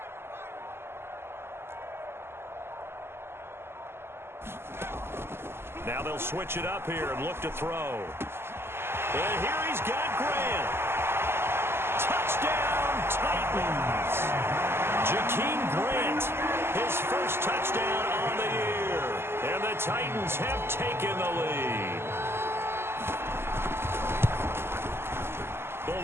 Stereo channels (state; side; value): late; left; 0.12 ms